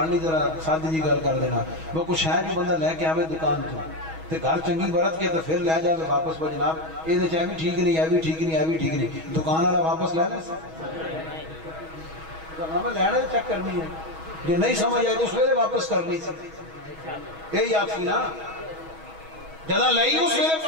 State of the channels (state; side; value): late; left; 6.2 ms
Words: نہیں ذرا سادی جی گل کر دینا. وہ کچھ ہے جو بندہ لے کے آوے دکان تو تے گھر چنگی برت کے تو پھر لے جاوے واپس. وہ جناب یہ چاہے بھی ٹھیک نہیں، یہ بھی ٹھیک نہیں، یہ بھی ٹھیک نہیں، دکان والا واپس لے لے ہمیں لینا چیک کرنی ہے. جو نہیں سمجھ آئی تو اس ویلے واپس کرنی سی. یہی آپ کی نا جدہ لئی اس ویلے